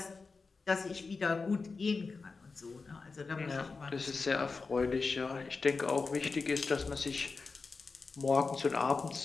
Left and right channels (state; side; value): quieter; right; 4.3 dB